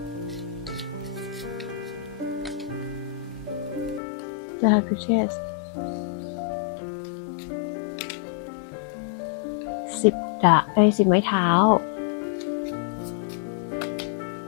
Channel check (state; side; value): drops out; right; at 4.0 s